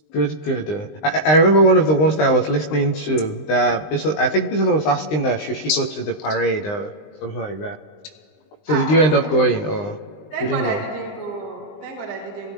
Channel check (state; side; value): late; right; 20 ms